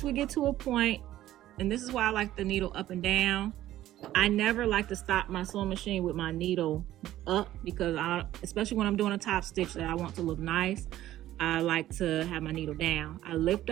we get to a point, and this is why I like the needle up and down, I never like to stop my sewing machine with my needle up, because especially when I'm doing a top stitch that I want to look nice, I like to have my needle down. I lift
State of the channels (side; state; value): left; quieter; 13.9 dB